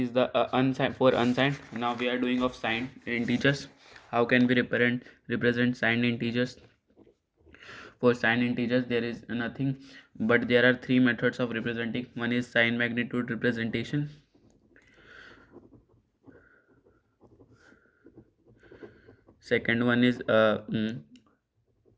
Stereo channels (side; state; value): both; identical; correlation 1.00